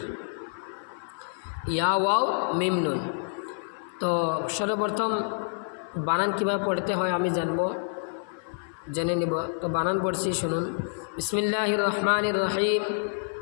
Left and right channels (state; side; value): silent; right; 55 dB below the other